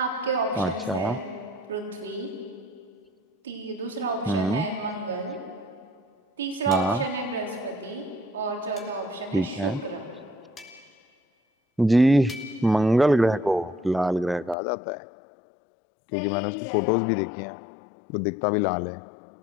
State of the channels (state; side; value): drops out; right; at 14.6 s